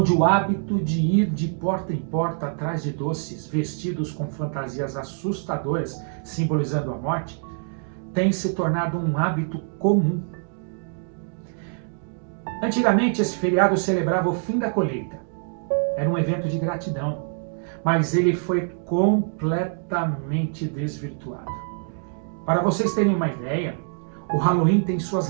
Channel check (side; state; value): left; silent; 62 dB below the other